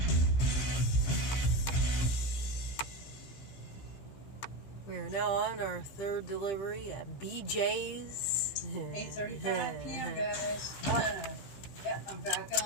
We are now on our third delivery at BJ's. 8:35 p.m. guys. Yep, I'm back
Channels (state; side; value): late; right; 15 ms